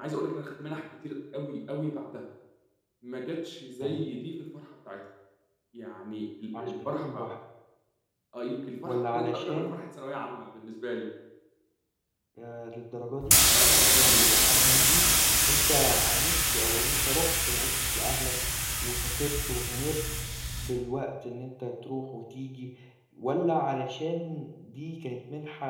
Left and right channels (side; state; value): both; identical; correlation 1.00